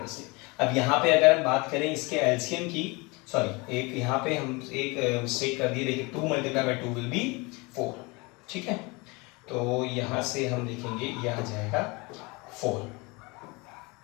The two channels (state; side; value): quieter; right; 26.2 dB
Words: से। अब यहाँ पे अगर हम बात करें इसके एलसीएम की, सॉरी एक यहाँ पे हम एक मिस्टेक कर दिए, देखिए 2 मल्टीप्लाई बाय 2 विल बी 4। ठीक है, तो यहाँ से हम लिखेंगे यह आ जाएगा 4।